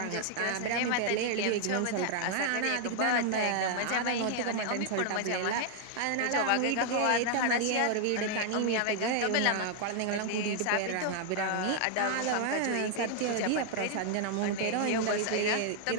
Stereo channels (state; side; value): different; both; correlation 0.00